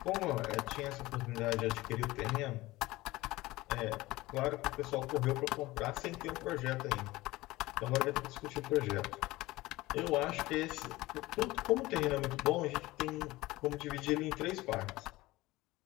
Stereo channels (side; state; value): right; quieter; 19.1 dB